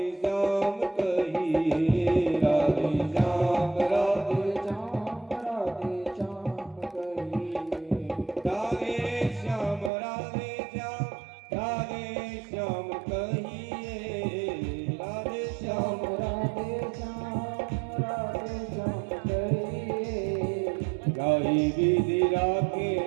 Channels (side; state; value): left; drops out; at 9.9 s